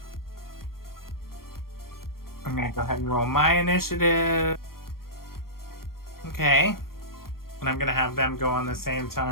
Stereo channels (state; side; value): late; right; 0.93 ms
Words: I'm gonna go ahead and roll my initiative. Okay. And I'm gonna have them go on the same